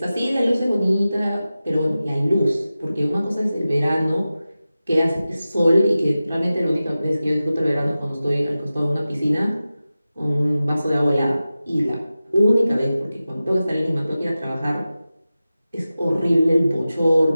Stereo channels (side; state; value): both; inverted; correlation -0.95